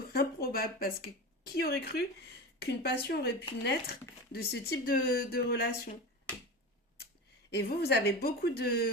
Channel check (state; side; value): normal; both; correlation 0.26